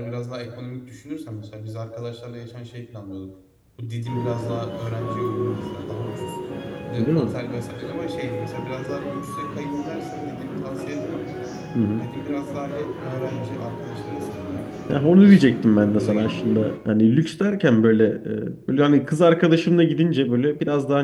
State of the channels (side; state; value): both; identical; correlation 1.00